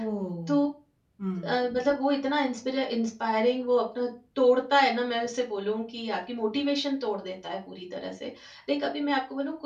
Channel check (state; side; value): identical; both; correlation 1.00